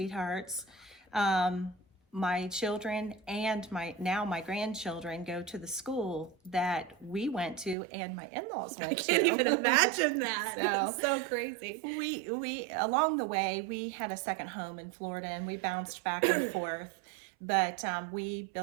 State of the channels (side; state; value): left; drops out; at 7.8 s